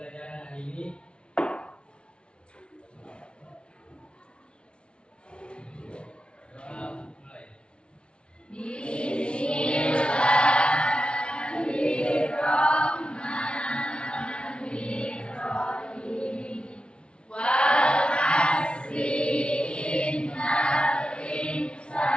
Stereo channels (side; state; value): right; late; 0.056 ms